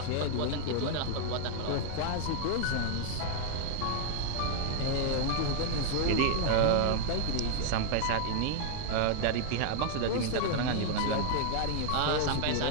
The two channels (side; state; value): both; different; correlation 0.00